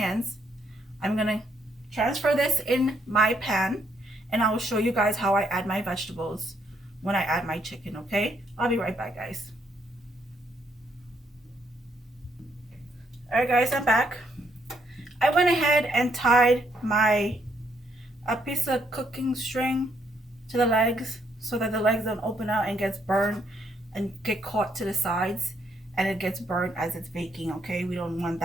I'm gonna transfer this in my pan, and I will show you guys how I add my vegetables when I add my chicken. Okay, I'll be right back, guys. All right, guys, I'm back. I went ahead and tied a piece of cooking string to the legs so that the legs don't open out and gets burned and get caught to the sides, and it gets burnt as it's baking. Okay, we don't want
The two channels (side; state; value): both; normal; correlation 0.73